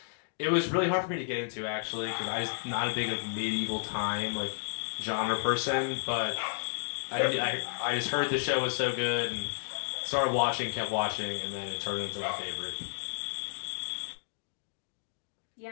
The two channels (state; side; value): silent; right; digital silence